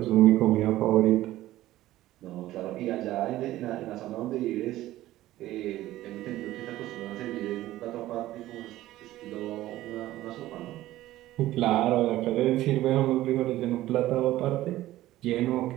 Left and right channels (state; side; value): quieter; left; 15.4 dB